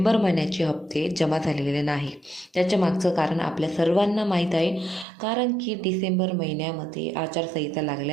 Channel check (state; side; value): drops out; left; at 5.1 s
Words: महिन्याचे हप्ते जमा झालेले नाही. त्याच्या मागचं कारण आपल्या सर्वांना माहीत आहे. कारण की डिसेंबर महिन्यामध्ये आचारसंहिता